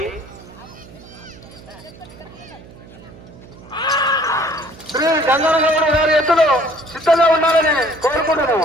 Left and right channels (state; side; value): noise; right; hum, 20 dB below the sound